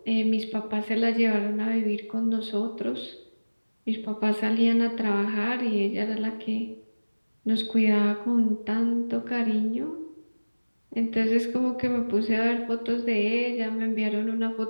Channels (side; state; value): both; inverted; correlation -1.00